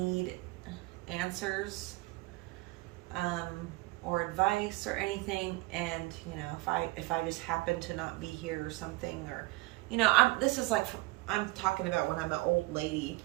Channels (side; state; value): left; quieter; 22.1 dB